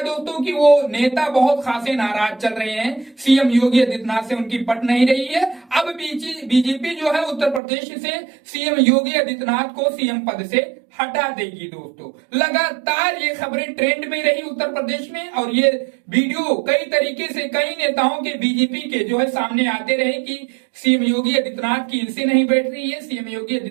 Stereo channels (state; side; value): drops out; left; at 7.6 s